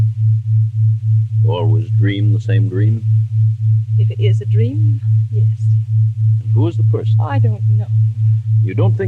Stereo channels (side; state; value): both; identical; correlation 1.00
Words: You always dream the same dream? If it is a dream, yes. And who is the person? I don't know. You don't